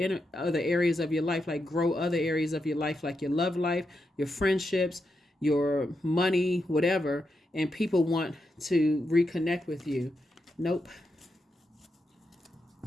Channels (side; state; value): both; normal; correlation 0.85